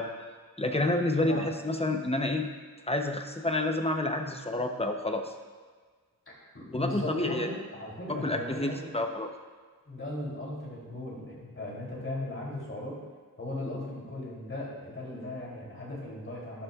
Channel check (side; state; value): both; normal; correlation 0.43